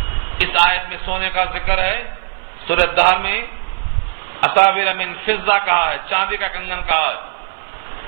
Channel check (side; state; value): left; silent; 58 dB below the other